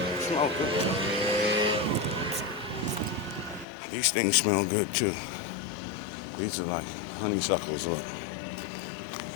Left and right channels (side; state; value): right; drops out; at 3.7 s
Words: smells good. These things smell good too. These are like honeysuckles. Look,